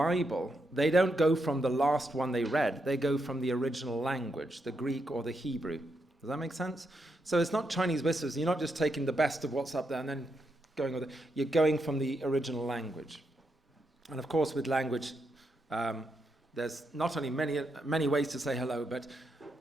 they don't go from the last one they read. They go from the original language, the Greek or the Hebrew. Does that make sense? So it's not Chinese whispers. You're not just taking the best of what's up there and then going with it. You're going from the original language. And of course, with language, there's not only many ways to say hello, but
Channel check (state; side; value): normal; both; correlation 0.82